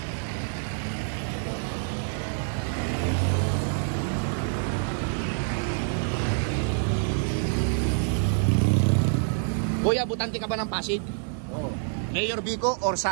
Kuya, butante ka ba ng Pasig? Oo. Mayor Biko or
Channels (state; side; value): silent; left; 60 dB below the other